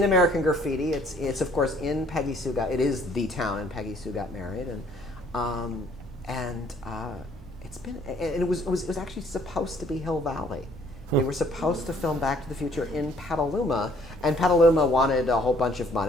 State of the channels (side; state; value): both; normal; correlation 0.61